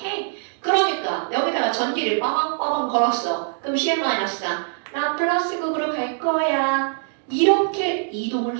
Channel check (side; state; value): left; silent; digital silence